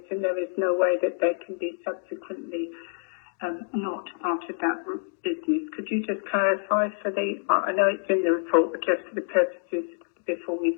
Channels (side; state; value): right; silent; digital silence